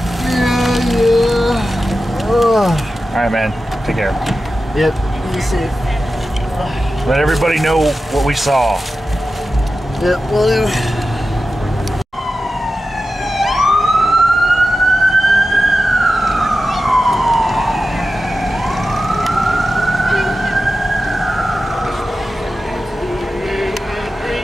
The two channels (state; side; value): normal; both; correlation 0.93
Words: All right, man. Take care. Yep, you safe. Let everybody know what we saw. Yep, will do.